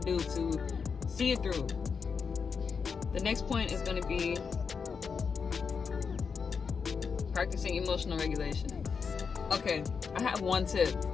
to see it through. The next point is going to be practicing emotional regulation. Okay, I have one tip.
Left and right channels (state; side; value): quieter; right; 5.8 dB